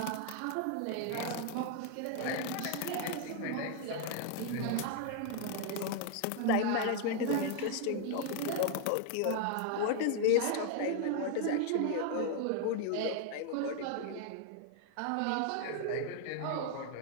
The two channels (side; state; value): both; different; correlation 0.00